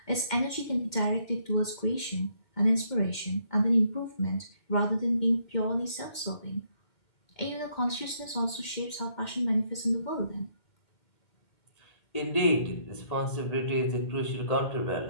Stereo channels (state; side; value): late; right; 2.1 ms